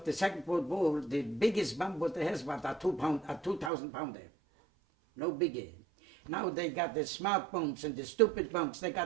the Second World War, the biggest bomb what they has was a 2,000 pounder. No bigger. Now they got the smart bombs and the stupid bombs. They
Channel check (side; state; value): left; drops out; at 3.7 s